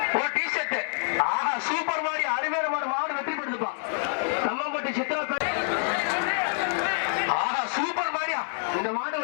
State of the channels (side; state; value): right; silent; 60 dB below the other